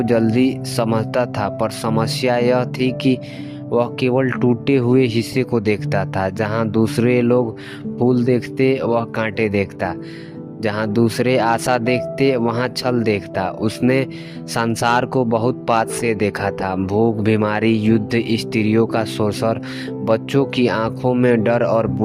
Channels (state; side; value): identical; both; correlation 1.00